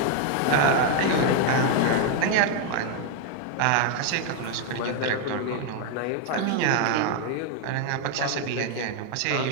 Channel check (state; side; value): different; both; correlation 0.00